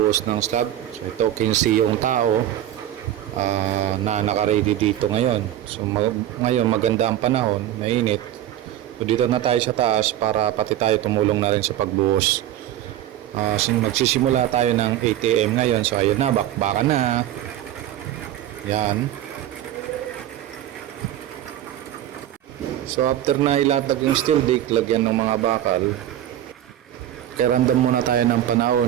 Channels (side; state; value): left; quieter; 12.3 dB